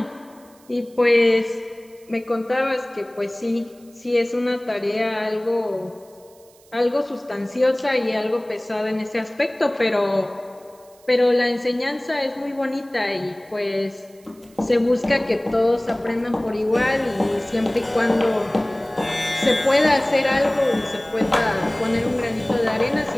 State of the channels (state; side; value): noise; right; hiss, 29 dB below the sound